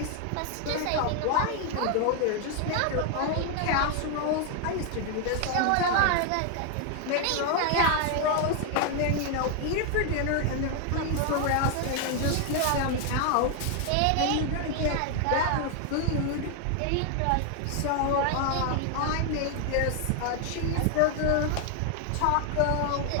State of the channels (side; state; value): both; different; correlation 0.00